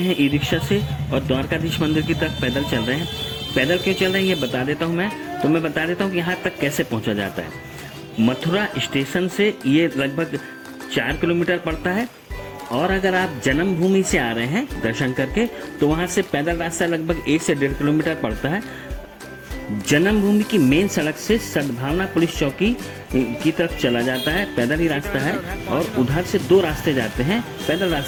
ई रिक्शा से और द्वारकाधीश मंदिर की तरफ पैदल चल रहे हैं। पैदल क्यों चल रहे हैं ये बता देता हूँ मैं बता देता हूँ कि यहाँ तक कैसे पहुँचा जाता है। मथुरा स्टेशन से ये लगभग 4 किलोमीटर पड़ता है और अगर आप जन्मभूमि से आ रहे हैं दर्शन करके तो वहाँ से पैदल रास्ता लगभग 1 से 1.5 किलोमीटर पड़ता है। जन्मभूमि की मेन सड़क से सद्भावना पुलिस चौकी की तरफ चला जाता है, पैदल ही रास्ता है और उधर से 2 रास्ते जाते हैं। पैदल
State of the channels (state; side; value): identical; both; correlation 1.00